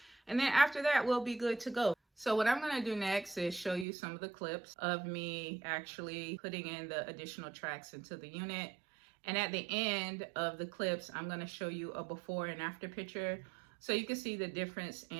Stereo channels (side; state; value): left; drops out; at 3.9 s